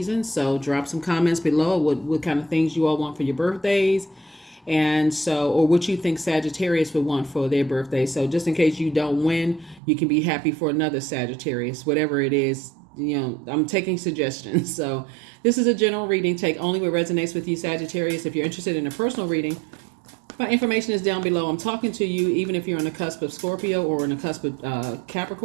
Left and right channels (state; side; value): drops out; left; at 9.8 s